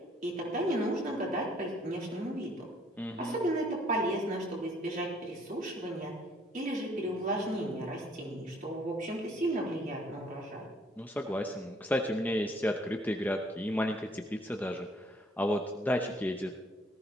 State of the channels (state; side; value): normal; both; correlation 0.62